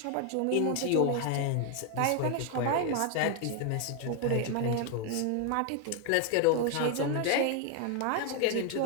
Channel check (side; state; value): both; different; correlation 0.01